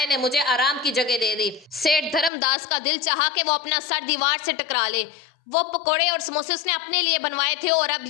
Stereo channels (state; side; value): drops out; right; at 2.3 s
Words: ने मुझे आराम की जगह दे दी। सेठ धर्मदास का दिल चाहा कि वो अपना सर दीवार से टकरा ले। वो पकोड़े और समोसे उसने अपने लिए बनवाए थे और